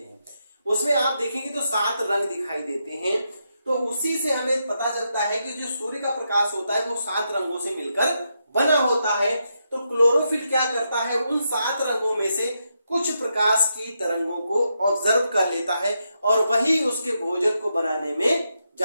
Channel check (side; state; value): both; inverted; correlation -0.83